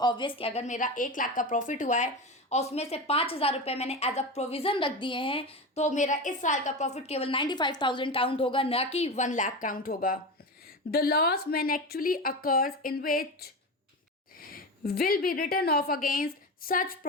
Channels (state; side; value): normal; both; correlation 0.23